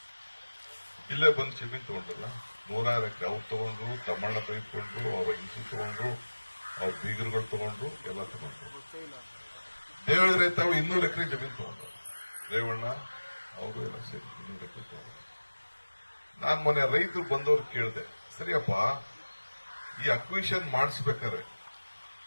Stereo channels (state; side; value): inverted; both; correlation -1.00